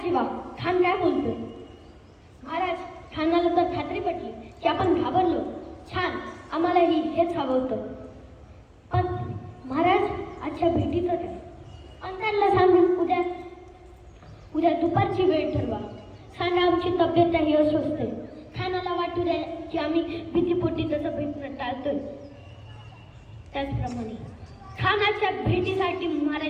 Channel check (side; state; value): both; identical; correlation 1.00